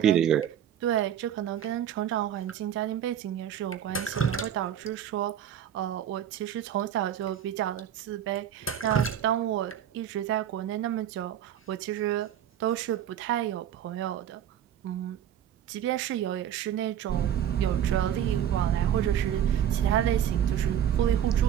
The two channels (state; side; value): quieter; left; 10.0 dB